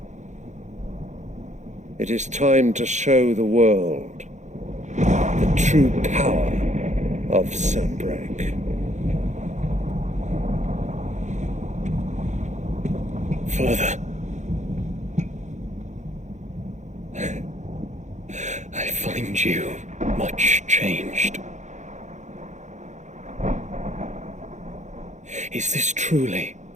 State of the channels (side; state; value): left; late; 0.34 ms